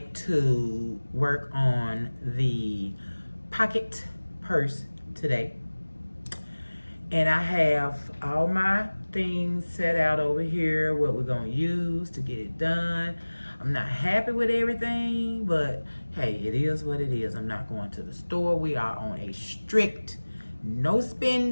to work on the pocket purse today. And I have all my things set out over here, what we're going to use to get it done. I'm not happy with everything, but hey, it is what it is. I'm not going to the store. We are on a strict no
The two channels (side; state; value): both; inverted; correlation -1.00